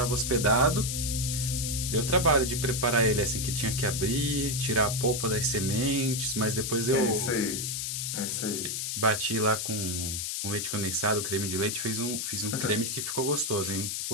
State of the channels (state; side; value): noise; left; hiss, 2 dB below the sound